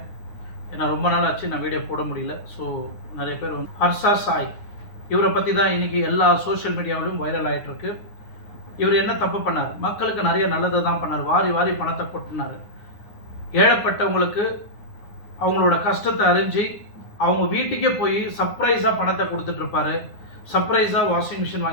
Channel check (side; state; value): right; late; 9.7 ms